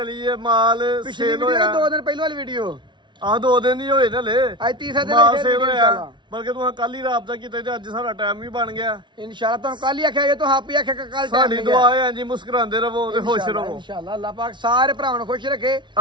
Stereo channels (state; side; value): late; left; 0.23 ms